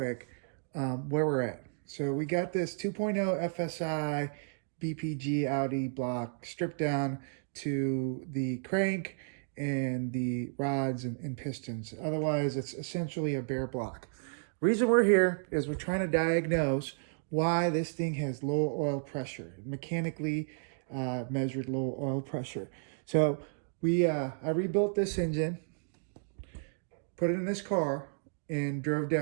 where we're at. So we got this 2.0 Fsi BPG Audi block stripped down to the crank and the rods and pistons. Otherwise, it's essentially a bare block. Reason we're here is we're trying to diagnose why this thing has low oil pressure, mechanically measured low oil pressure. So I rebuilt this engine, put it in this car, and drove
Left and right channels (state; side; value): silent; left; digital silence